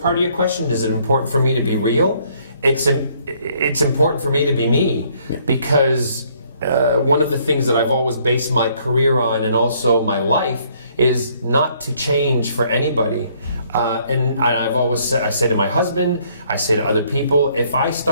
of your question, is it important for me to be real? It's important for me to be me, because one of the things that I've always based my career on, and also my life, is not to change for anybody. And I've always said, I say to my husband, I say to other people, if I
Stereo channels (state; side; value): inverted; both; correlation -0.65